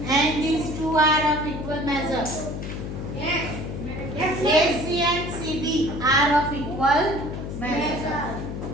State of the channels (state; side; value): noise; left; hum, 6 dB below the sound